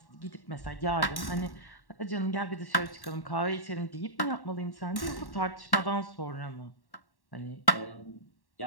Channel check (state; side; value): late; right; 1.1 ms